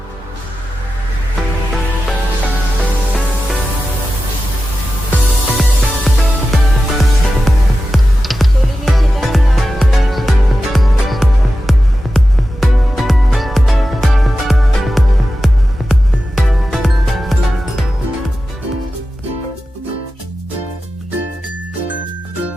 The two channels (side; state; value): both; normal; correlation 0.92